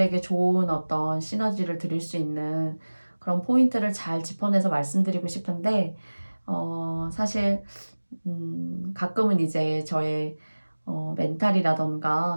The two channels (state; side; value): inverted; both; correlation -1.00